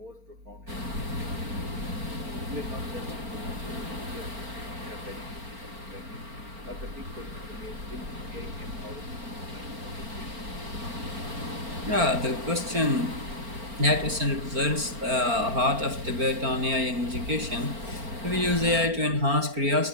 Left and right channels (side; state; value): left; late; 4.4 ms